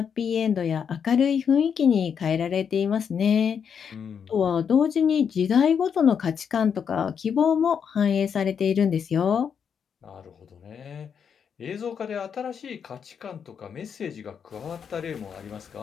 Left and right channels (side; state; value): right; quieter; 7.2 dB